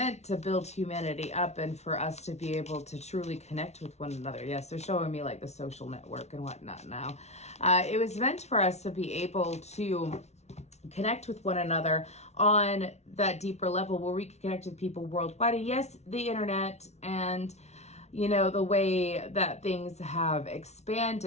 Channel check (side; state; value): right; late; 0.32 ms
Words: to build humanity up and for us to be able to truly connect with one another. Yes, they're showing me like the social network and whatnot now. It was meant for us to be able to connect with one another on that deeper level where we can connect with people worldwide. And yes, the internet and, you know, the way that things have